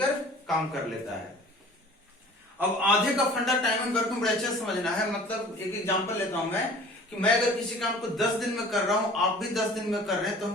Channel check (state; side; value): normal; both; correlation 0.46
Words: काम कर लेता है। अब आधे का फंडा टाइम एंड वर्क में बड़ा अच्छा समझना है। मतलब एक एग्जांपल लेता हूं मैं कि मैं अगर किसी काम को 10 दिन में कर रहा हूं, आप भी 10 दिन में कर रहे हैं, तो